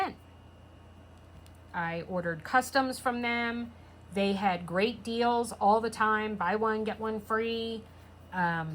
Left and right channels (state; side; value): identical; both; correlation 1.00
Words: I ordered customs from them. They had great deals all the time. Buy one, get one free.